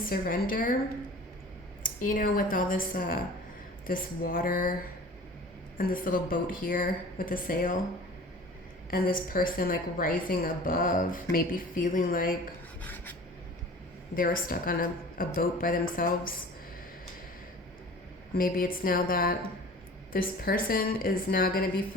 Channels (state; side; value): normal; both; correlation 0.42